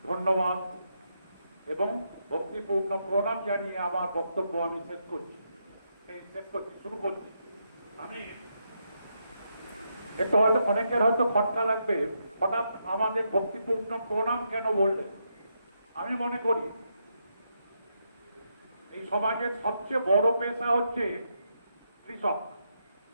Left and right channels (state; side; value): inverted; both; correlation -0.81